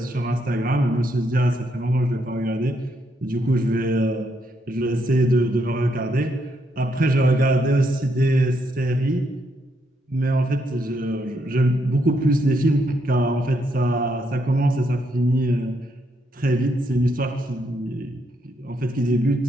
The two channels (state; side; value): normal; both; correlation 0.76